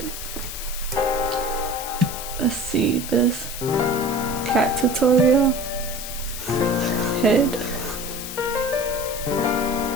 let's see this cat tutorial. Head,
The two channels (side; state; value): left; noise; hiss, 8 dB below the sound